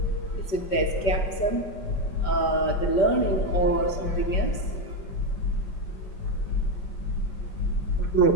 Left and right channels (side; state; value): right; late; 5.2 ms